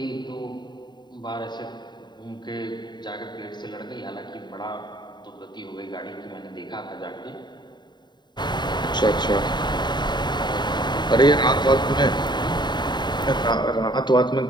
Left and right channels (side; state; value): right; late; 0.21 ms